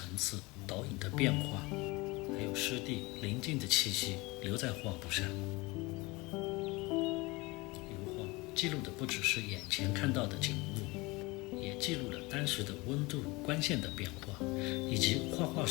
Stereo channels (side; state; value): right; quieter; 23.8 dB